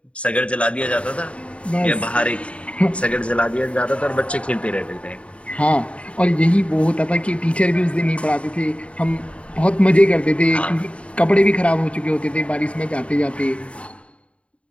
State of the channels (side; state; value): right; late; 0.062 ms